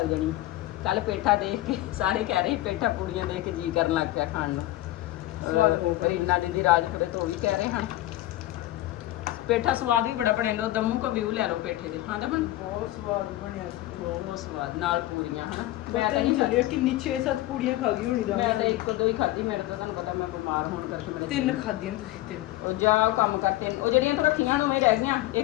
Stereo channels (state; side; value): quieter; right; 16.4 dB